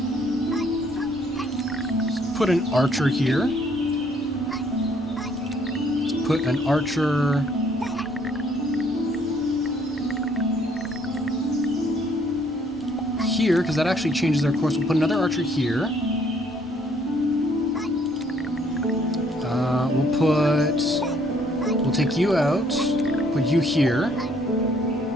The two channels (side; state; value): both; normal; correlation 0.65